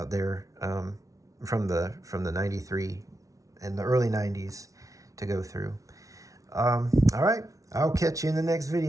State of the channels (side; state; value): left; late; 0.17 ms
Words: there from the 93 and the early 90s to go through. All right, I'll catch you in the next